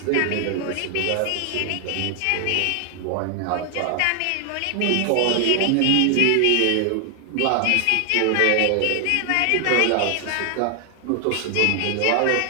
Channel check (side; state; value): both; different; correlation 0.00